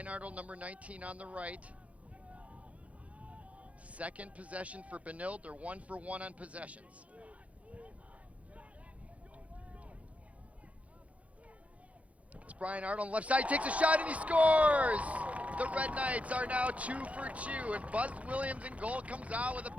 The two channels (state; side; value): late; left; 0.066 ms